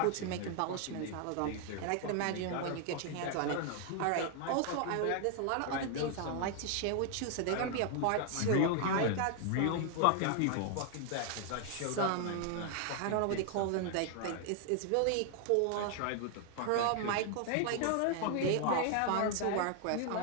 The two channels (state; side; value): different; both; correlation 0.00